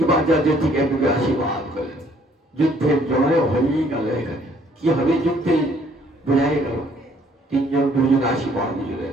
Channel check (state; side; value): normal; both; correlation 0.62